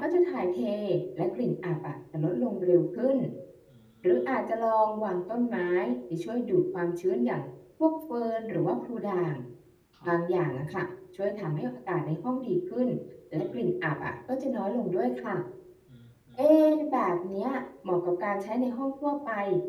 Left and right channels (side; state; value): both; identical; correlation 1.00